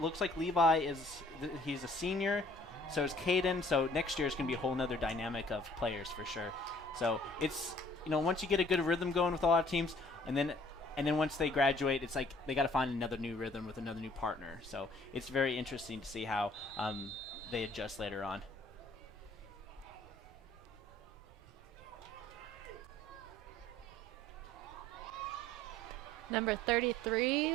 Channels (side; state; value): right; noise; rumble, 22 dB below the sound